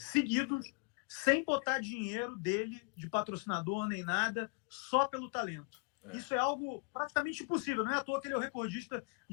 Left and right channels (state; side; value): quieter; right; 32.1 dB